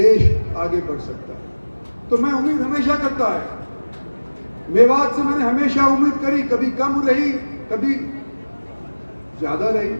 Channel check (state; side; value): inverted; both; correlation -1.00